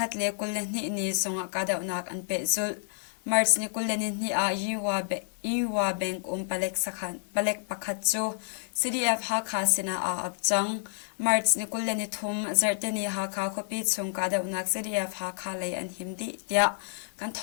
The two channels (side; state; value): right; silent; 58 dB below the other